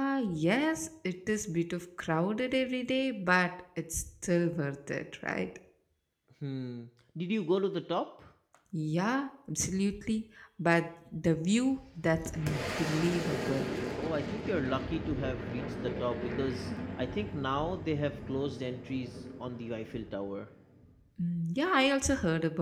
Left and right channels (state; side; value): identical; both; correlation 1.00